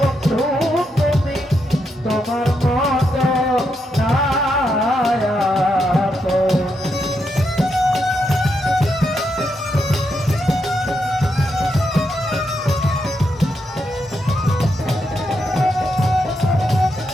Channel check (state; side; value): normal; both; correlation 0.82